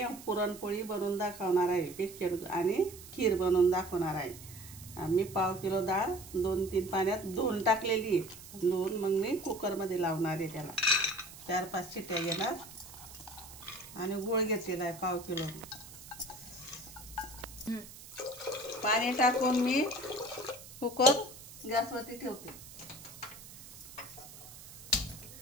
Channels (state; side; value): noise; right; hiss, 16 dB below the sound